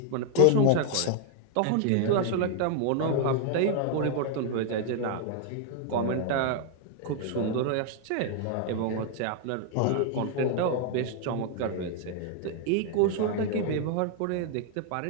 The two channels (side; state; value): both; different; correlation 0.00